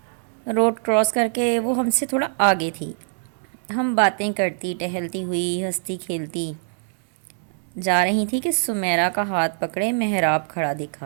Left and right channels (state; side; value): silent; left; digital silence